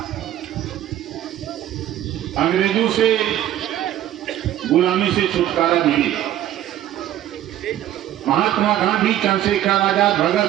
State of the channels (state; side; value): quieter; left; 12.5 dB